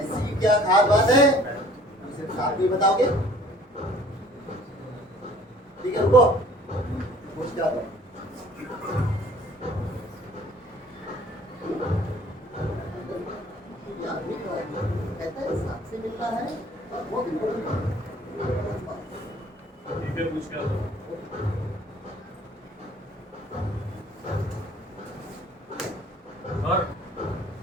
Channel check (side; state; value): both; normal; correlation 0.53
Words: क्या खास बात है? मुझे साथ में बताओगे? ठीक है, रुको। पूछ क्या दो? ये आदमी कहता है साथ से मिलना है और वो बिल्कुल ठीक है, पूछ क्या दो।